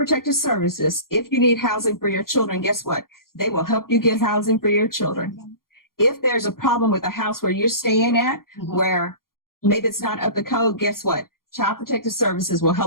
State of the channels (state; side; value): late; right; 0.92 ms